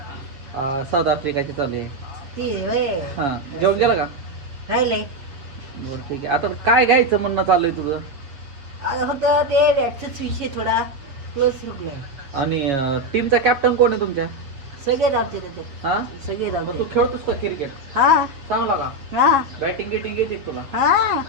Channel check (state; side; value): late; left; 7.1 ms